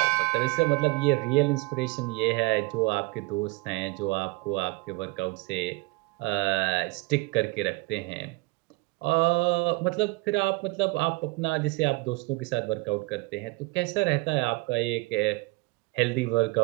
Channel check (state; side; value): quieter; left; 24.4 dB